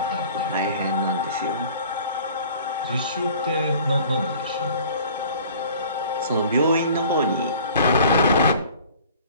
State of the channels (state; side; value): inverted; both; correlation -0.49